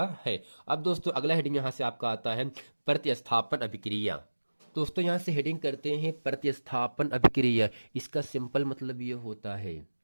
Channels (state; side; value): inverted; both; correlation -1.00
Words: है। अब दोस्तों अगला हेडिंग यहाँ से आपका आता है प्रतिस्थापन अभिक्रिया। दोस्तों यहाँ से हेडिंग करते हैं प्रतिस्थापन अभिक्रिया। इसका सिंपल मतलब ये होता है